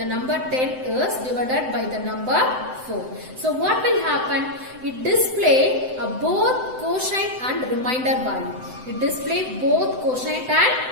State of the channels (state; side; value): late; left; 7.8 ms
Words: number 10 is divided by the number 4. So what will happen? It display both quotient and remainder value. It display both quotient and